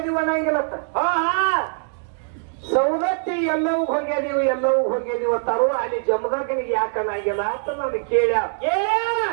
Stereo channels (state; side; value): silent; left; 64 dB below the other